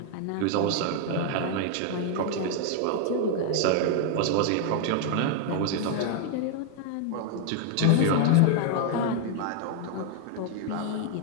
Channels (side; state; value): both; different; correlation 0.00